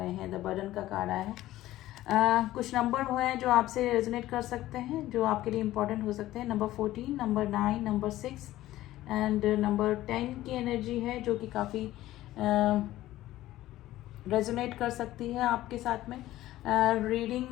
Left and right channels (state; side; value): quieter; right; 15.2 dB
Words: हैं। द बर्डन का कार्ड आया है। कुछ नंबर वो हैं जो आपसे रेजोनेट कर सकते हैं, जो आपके लिए इंपॉर्टेंट हो सकते हैं। Number 14, number 9, number 6 and number 10 की एनर्जी है, जो कि काफ़ी रेजोनेट कर सकती है आपके साथ में। रीडिंग